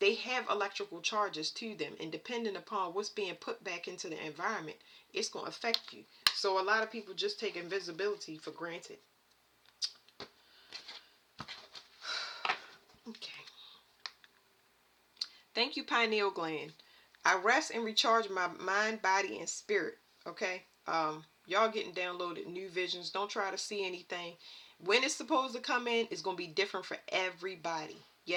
have electrical charges to them, and depending upon what's being put back into the environment, it's going to affect you. So a lot of people just take invisibility for granted. Okay. Thank you, pineal gland. I rest and recharge my mind, body, and spirit. Okay. Y'all getting downloaded new visions. Don't try to see anything. When it's supposed to come in, it's going to be different for everybody.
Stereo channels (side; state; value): both; identical; correlation 1.00